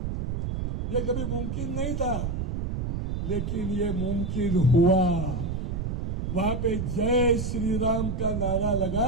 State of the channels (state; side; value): noise; right; rumble, 2 dB below the sound